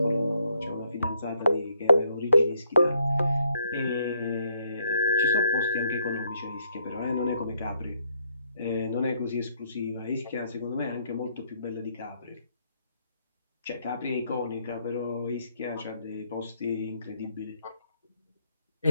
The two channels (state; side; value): inverted; both; correlation -0.72